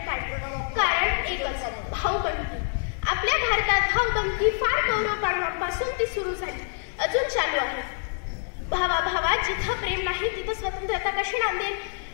कारण एकच भाऊबंदी। आपल्या भारतात भाऊबंदी फार कौरवकाळापासून ती सुरू झाली, अजून चालू आहे। भावाभावात जिथं प्रेम नाही तिथं स्वतंत्रता कशी नांदेल?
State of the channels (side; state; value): right; silent; digital silence